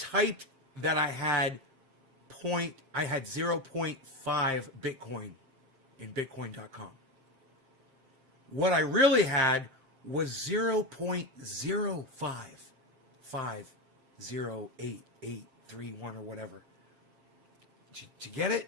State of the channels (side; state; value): left; late; 7.5 ms